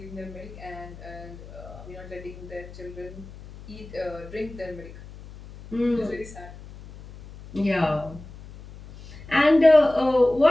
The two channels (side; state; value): left; noise; hum, 16 dB below the sound